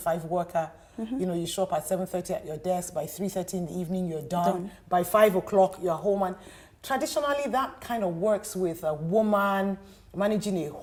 worker. You show up at 7:30 at your desk, by 3:30 in the evening you're done. By 5 o'clock you're home. And traditionally that kind of works with a woman managing a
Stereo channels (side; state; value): both; identical; correlation 1.00